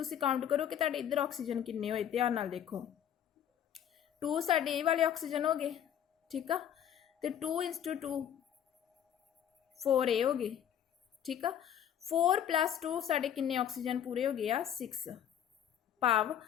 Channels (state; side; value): quieter; right; 9.7 dB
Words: ਕਾਊਂਟ ਕਰੋ ਕਿ ਤੁਹਾਡੇ ਇੱਧਰ ਆਕਸੀਜਨ ਕਿੰਨੇ ਹੋਏ, ਧਿਆਨ ਨਾਲ ਦੇਖੋ। 2 ਸਾਡੇ ਇਹ ਵਾਲੇ ਆਕਸੀਜਨ ਹੋ ਗਏ। ਠੀਕ ਆ, ਤੇ 2 × 2 4 ਇਹ ਹੋ ਗਏ। ਠੀਕ ਆ, 4 + 2 ਸਾਡੇ ਕਿੰਨੇ ਆਕਸੀਜਨ ਪੂਰੇ ਹੋ ਗਏ ਆ 6। ਭਾਵ